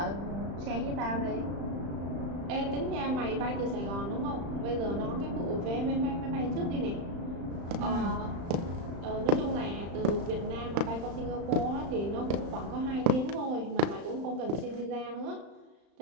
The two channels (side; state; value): left; late; 35 ms